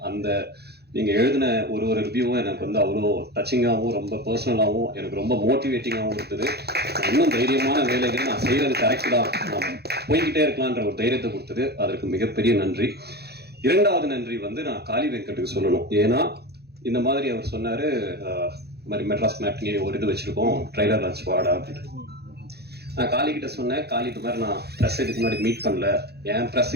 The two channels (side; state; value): left; late; 0.47 ms